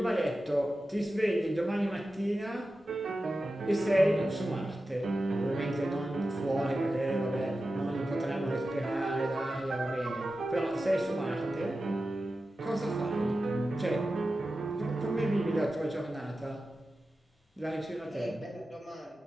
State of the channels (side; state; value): both; normal; correlation 0.93